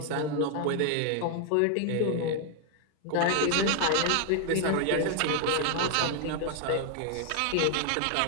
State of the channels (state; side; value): different; both; correlation 0.00